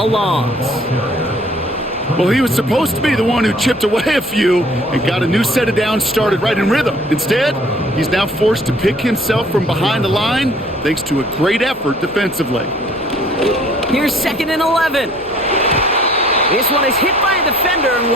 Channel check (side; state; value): both; normal; correlation 0.56